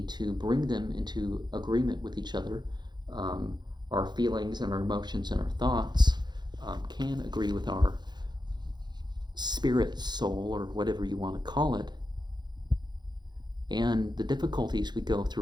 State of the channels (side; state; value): left; late; 0.21 ms